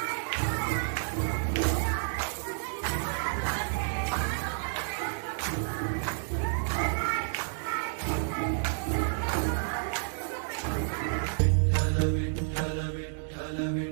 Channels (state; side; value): silent; left; digital silence